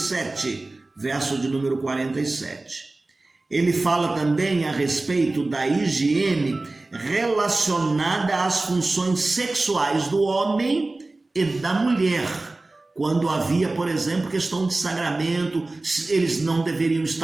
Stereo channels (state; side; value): quieter; left; 3.1 dB